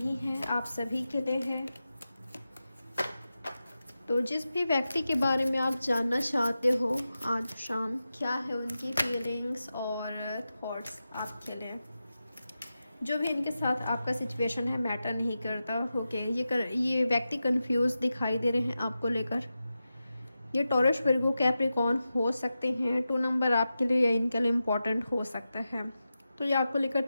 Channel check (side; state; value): both; inverted; correlation -0.92